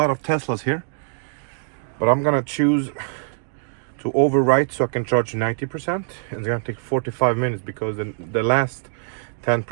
of Teslas here. But I'm gonna choose to overwrite so I can charge 90%. And it's gonna take 45 minutes because the last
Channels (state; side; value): silent; left; 63 dB below the other